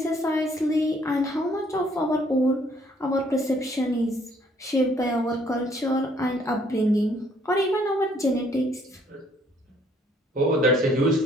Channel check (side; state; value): both; normal; correlation 0.63